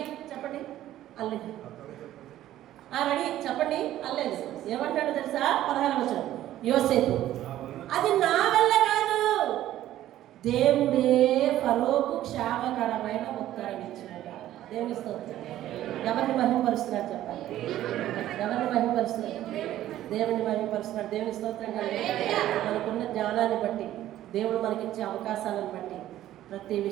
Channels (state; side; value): quieter; left; 13.3 dB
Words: చెప్పండి. రెడీ చెప్పండి అనలేదు. ఏమంటాడు తెలుసా? 16వ వచనం యోసేపు, అది నా వల్ల కాదు, దేవుడే ఫరోకు క్షేమకరమైన ఉత్తరం ఇచ్చినగా. దేవుని స్తోత్రం. ఎవరిని మహిమపరుస్తున్నాడు చెప్పండి? ఎవరిని మహిమపరుస్తున్నాడు? దేవుని మహిమపరుస్తున్నాడు. దేవుని స్తోత్రం. మనకున్న జ్ఞానాన్ని బట్టి, దేవుడు మనకిచ్చే అవకాశాలను బట్టి ప్రతి